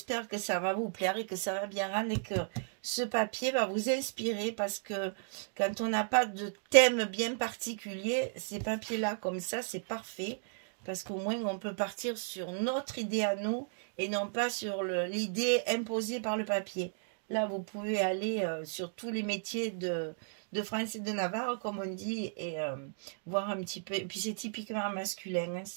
que ça va vous plaire et que ça va bien rendre et que ce papier va vous inspirer parce que quand on n'a pas de thème bien particulier, ces papiers-là comme ça, c'est parfait parce qu'au moins on peut partir sur notre idée à nous et non pas sur l'idée imposée par le papier. Là, vous pouvez aller sur tous les métiers de France et de Navarre, comme on dit, et voir un petit peu. Et puis c'est typiquement masculin, hein,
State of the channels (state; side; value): silent; left; digital silence